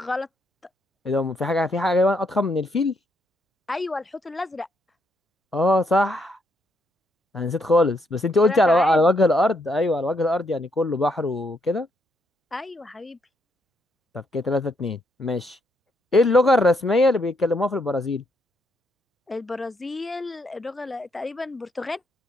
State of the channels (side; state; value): both; normal; correlation 0.75